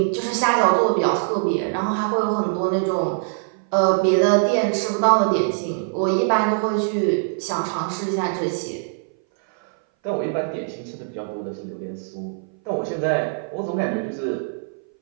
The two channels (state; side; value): silent; left; 60 dB below the other